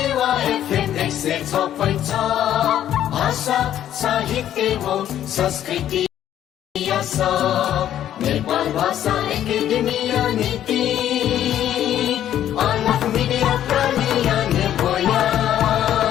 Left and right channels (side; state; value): right; quieter; 11.2 dB